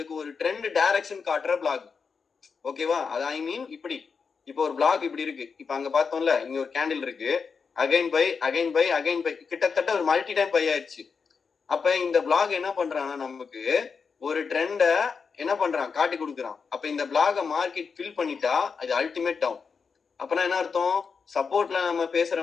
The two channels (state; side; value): quieter; right; 5.5 dB